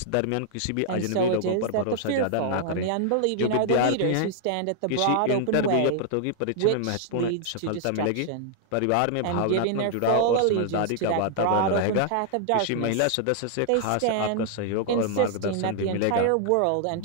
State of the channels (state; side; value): different; both; correlation -0.01